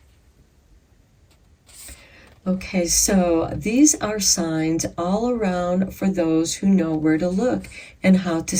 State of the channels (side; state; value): both; identical; correlation 1.00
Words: Okay, so these are signs all around for those who know where to look and how to